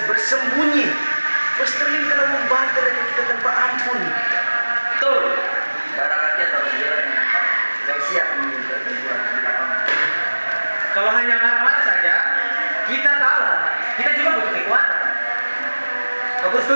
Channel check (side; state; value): both; inverted; correlation -1.00